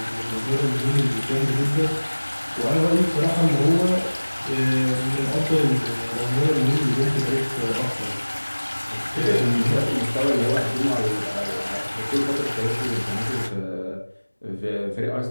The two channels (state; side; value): inverted; both; correlation -1.00